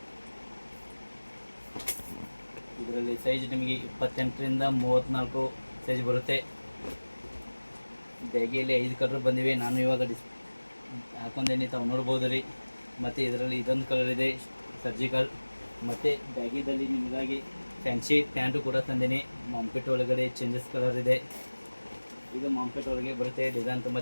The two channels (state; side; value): inverted; both; correlation -1.00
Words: ಇದರಲ್ಲಿ ಸೈಜ್ ನಿಮಗೆ 28ರಿಂದ 34 ಸೈಜ್ ಬರುತ್ತೆ. ಬ್ಯಾಗಿಯಲ್ಲಿ 5 ಕಲರ್ ಬಂದಿವೆ. ನಾನು ಇವಾಗ ಹಾಕೊಂಡೇನೆ, ತಾವು ನೋಡ್ಬೋದು ರೀ. ಮತ್ತು ಇದರಲ್ಲಿ ಇದೊಂದು ಕಲರ್ ಇದೆ ಸರ್ಜಿಕಲ್. ಮತ್ತು ಬ್ಯಾಗಿದಲ್ಲಿ ನಿಮಗಾಗಿ ಫ್ಯಾನ್ಸಿ ಪ್ಯಾಂಟು ಕೂಡ ತಂದೇನೆ. ಮಾಂಪೆಟ್ ಒಳಗಡೆ ಚೇಂಜಸ್ ಕಲರ್ ಇದೆ. ಇದು ಮಾಂಪೆಟ್ ಒಳಗೆ ಬರುತ್ತೆ. ಡಿಸೈನ್ ತುಂಬ